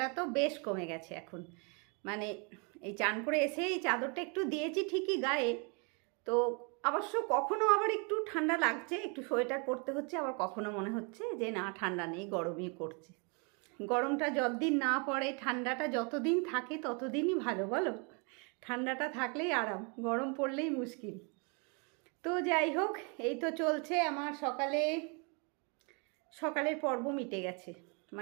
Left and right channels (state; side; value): quieter; left; 34.1 dB